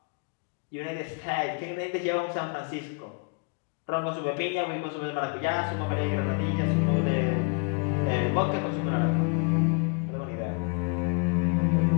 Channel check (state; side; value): quieter; right; 34.9 dB